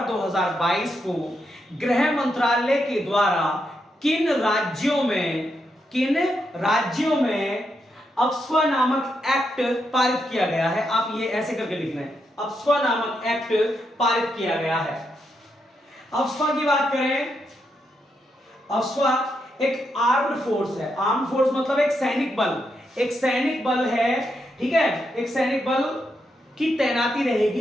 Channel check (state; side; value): normal; both; correlation 0.82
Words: 2022 को गृह मंत्रालय के द्वारा किन राज्यों में अफ्स्पा नामक एक्ट पारित किया गया है। आप ये ऐसे करके लिखना है, अफ्स्पा नामक एक्ट पारित किया गया है। अफ्स्पा की बात करें, अफ्स्पा एक आर्म्ड फोर्स है। आर्म्ड फोर्स मतलब एक सैनिक बल है, ठीक है। एक सैनिक बल की तैनाती